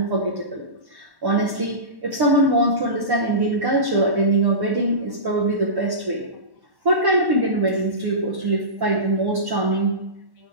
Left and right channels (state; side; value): late; left; 1.1 ms